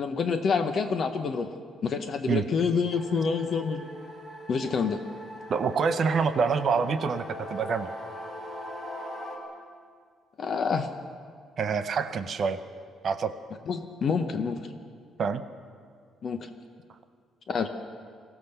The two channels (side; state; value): both; normal; correlation 0.70